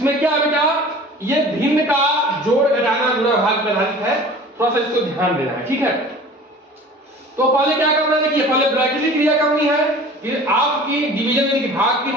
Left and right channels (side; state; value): both; normal; correlation 0.43